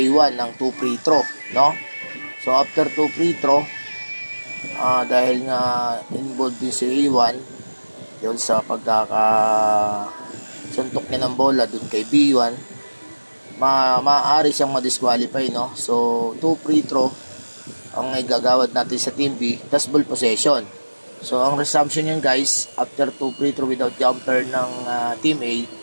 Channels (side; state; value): both; inverted; correlation -1.00